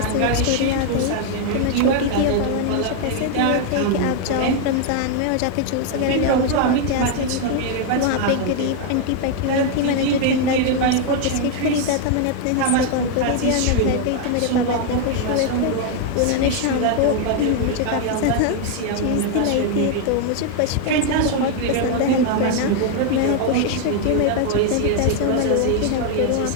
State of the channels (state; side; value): different; both; correlation 0.00